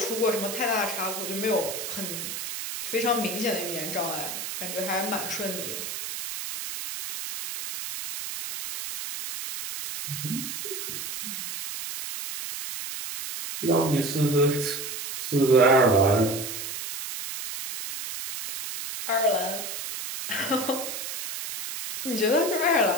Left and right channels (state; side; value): noise; right; hiss, 6 dB below the sound